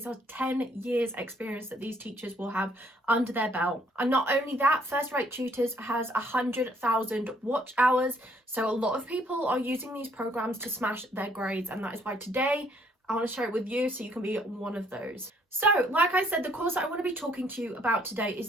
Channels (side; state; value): both; normal; correlation 0.65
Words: are 10 years experience that these teachers will have under their belt. And not only that, First Rate Tutors has 100,000 watch hours. So a lot of people are using these programs to smash their grades. And that is why today I want to share it with you so you can be one of those. So, like I said, the course that I want to be talking to you about today is